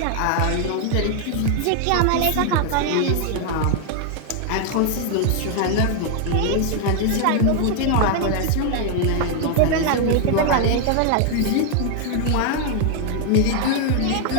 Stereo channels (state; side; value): different; both; correlation 0.00